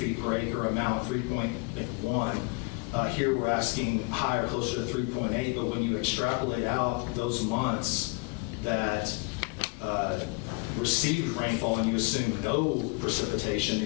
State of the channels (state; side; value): quieter; right; 29.2 dB